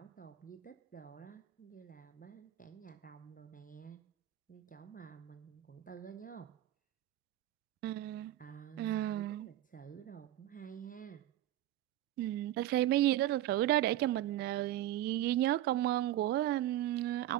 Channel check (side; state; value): left; quieter; 13.8 dB